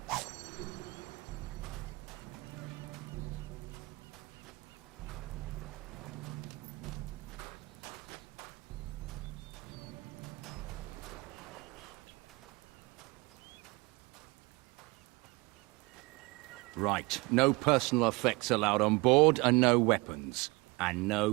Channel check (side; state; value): left; quieter; 25.1 dB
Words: Right, no personal effects allowed on board, and no weapons. And